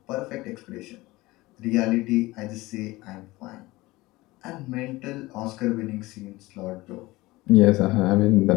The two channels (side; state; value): right; quieter; 20.1 dB